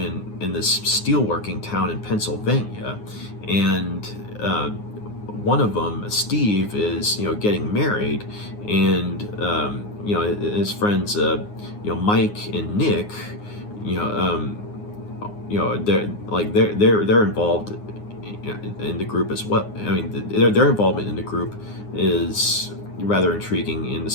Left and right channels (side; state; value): right; late; 9.6 ms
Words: this steelworking town in Pennsylvania, and one of them, Steve, is getting married, and his friends, Mike and Nick, you know, they're involved in the group as well. I mean, their involvement in the group is rather intriguing in the